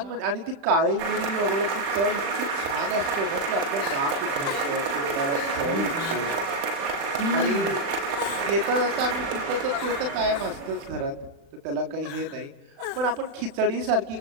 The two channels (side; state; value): left; late; 36 ms